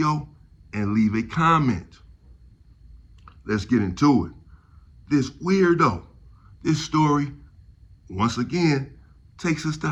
and leave a comment. Let's get into it. This weirdo, this story, once again, takes us to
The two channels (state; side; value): identical; both; correlation 1.00